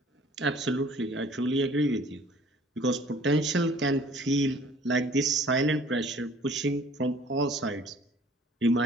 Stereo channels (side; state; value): both; normal; correlation 0.53